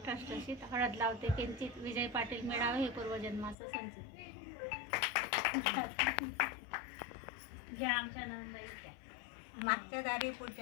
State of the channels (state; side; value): drops out; right; at 3.6 s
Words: ठसठशीत, हळद लावते किंचित, विजय पाटील मिळावे हे पूर्वजन्माचं संचित. घ्या आमच्या नंदाईच्या. मागच्या दारी